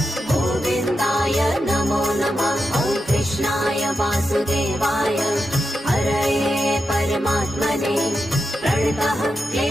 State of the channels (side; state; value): both; normal; correlation 0.88